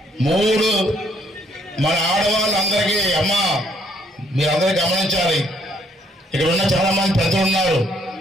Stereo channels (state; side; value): normal; both; correlation 0.67